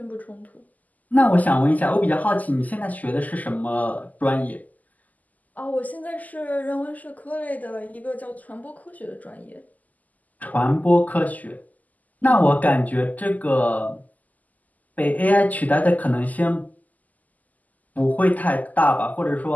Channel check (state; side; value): late; right; 0.079 ms